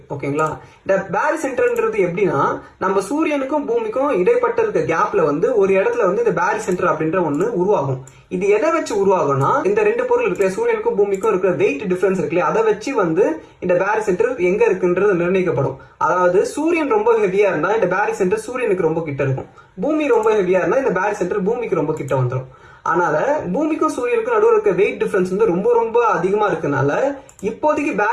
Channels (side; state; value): both; identical; correlation 1.00